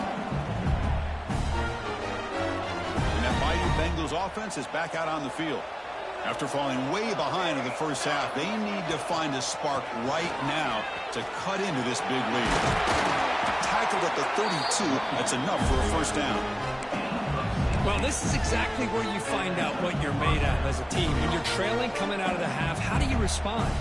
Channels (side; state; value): both; identical; correlation 1.00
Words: And that mighty Bengals offense is back out on the field. After falling way behind in the first half, they need to find a spark right now to cut into this big lead. Tackled at the 32, that's enough for a first down. Well, this is exactly where you find out what you're made of as a team. When you're trailing coming out of the half, how do you respond?